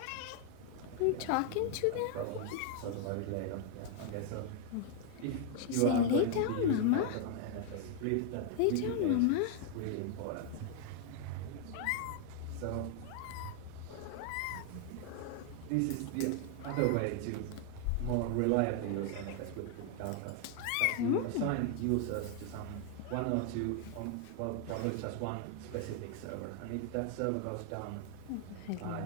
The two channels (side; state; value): both; different; correlation 0.00